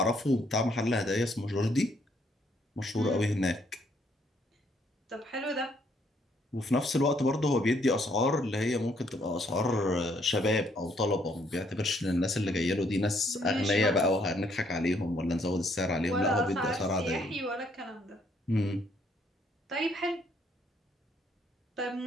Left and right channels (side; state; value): both; normal; correlation 0.69